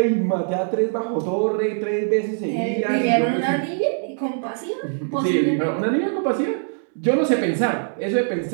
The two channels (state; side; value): silent; left; digital silence